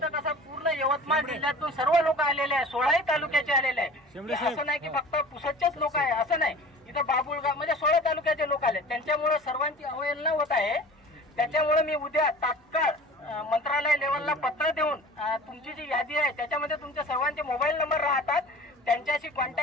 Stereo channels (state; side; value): normal; both; correlation 0.41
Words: कसं पूर्ण यवतमाळ जिल्ह्यातून सर्व लोक आलेले आहे, 16 तालुक्याचे आलेले आहे। असं नाही की फक्त पुसदचेच लोक आहे, असं नाही, इथं बाबुळगाव म्हणजे 16 तालुक्याचे लोक आले, त्यांच्यामुळे सर्वांची अवहेलना होत आहे। त्याच्यामुळे मी उद्या तात्काळ मंत्रालय लेवलला पत्र देऊन तुमची जी यादी आहे त्याच्यामध्ये तुमच्या सर्वांचे मोबाईल नंबर राहतात, त्यांच्याशी